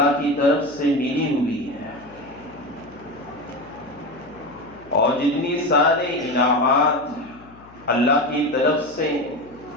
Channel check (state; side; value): noise; left; hum, 24 dB below the sound